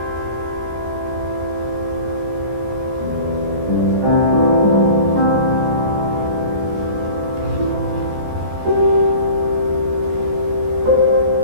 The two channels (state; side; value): late; left; 14 ms